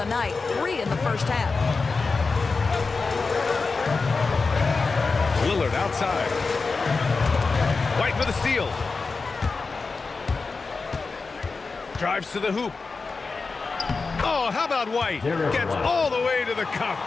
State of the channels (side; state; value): right; quieter; 4.3 dB